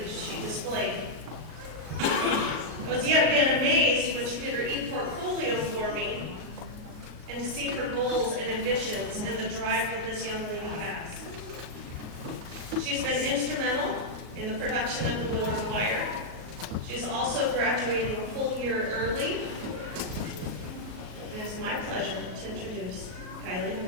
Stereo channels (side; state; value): left; late; 38 ms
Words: she displayed. I was yet again amazed when she did her e-portfolio for me and to see her goals and ambitions and the drive that this young lady has. She's been instrumental in the production of the Willard Choir. She's also graduating a full year early. And it's my pleasure to introduce Kylie